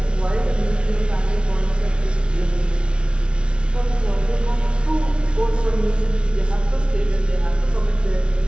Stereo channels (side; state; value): left; late; 0.058 ms